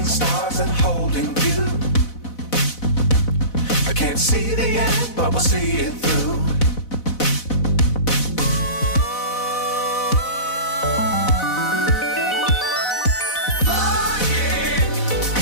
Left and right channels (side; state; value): right; late; 4.0 ms